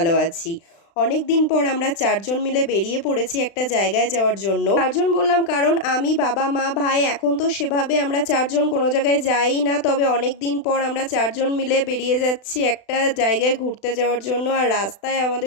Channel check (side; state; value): right; late; 36 ms